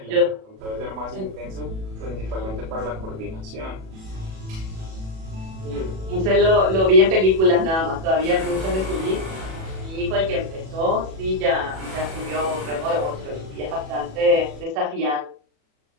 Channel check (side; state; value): left; late; 37 ms